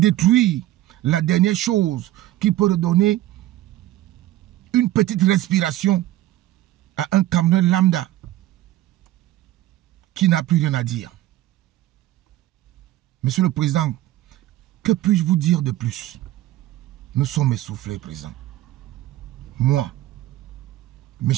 la dernière chose qui peut redonner une petite respiration à un Camerounais lambda qui n'a plus rien à dire. Monsieur le Président, que puis-je vous dire de plus? Nous sommes essoufflés, Président. Moi,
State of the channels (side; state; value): left; quieter; 15.0 dB